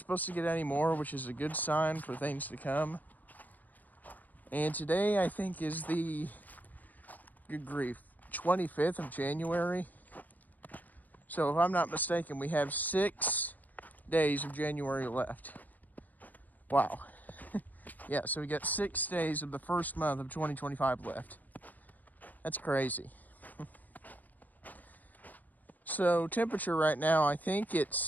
to get any more, which is a good sign for things to come. And today, I think, is the, good grief, 25th of January. So if I'm not mistaken, we have 6 days of January left. Wow. Yeah, so we got 6 days of the first month of 2025 left. That's crazy. So temperature right now, I think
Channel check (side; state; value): right; late; 0.082 ms